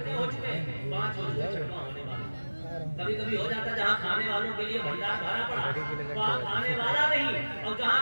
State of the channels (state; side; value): inverted; both; correlation -1.00